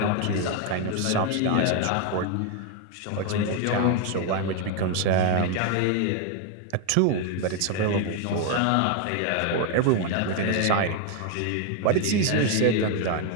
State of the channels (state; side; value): different; both; correlation 0.01